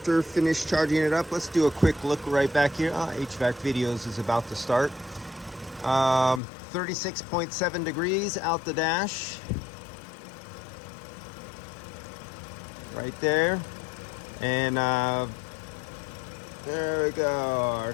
finished charging it up, let's do a quick look right back here. HVAC videos is about to start. 36.7 degrees out the dash. Right there. And there we go, our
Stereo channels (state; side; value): drops out; right; at 6.4 s